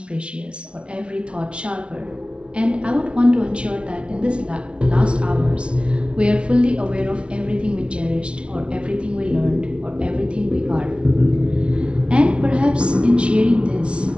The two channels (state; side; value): late; left; 0.059 ms